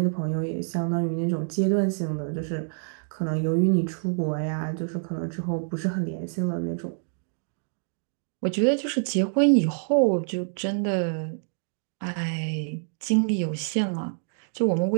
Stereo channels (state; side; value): silent; left; digital silence